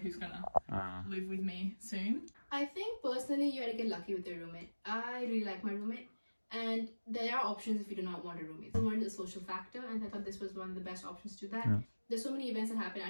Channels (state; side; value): inverted; both; correlation -1.00